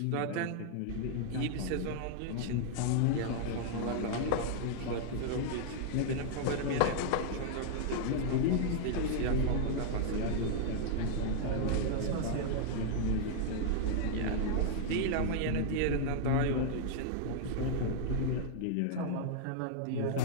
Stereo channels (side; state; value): both; different; correlation 0.00